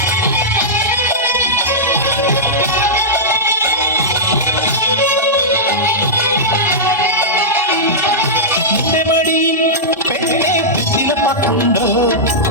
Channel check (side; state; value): both; normal; correlation -0.13